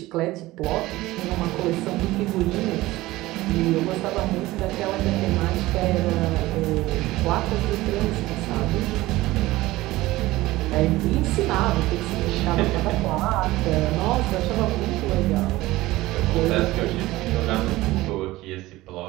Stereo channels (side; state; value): left; quieter; 18.2 dB